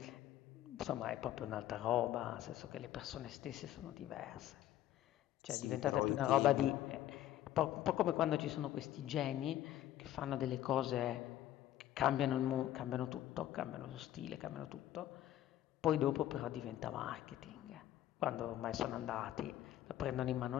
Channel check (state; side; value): quieter; right; 12.9 dB